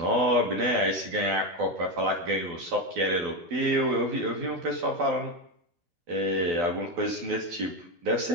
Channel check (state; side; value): late; left; 12 ms